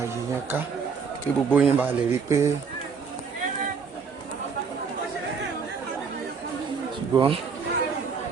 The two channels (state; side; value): quieter; left; 5.6 dB